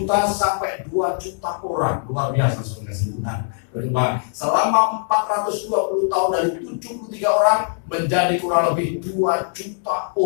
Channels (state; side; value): silent; right; 65 dB below the other